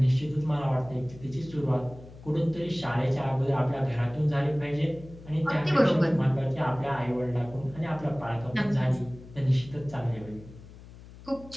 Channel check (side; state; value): left; noise; hum, 18 dB below the sound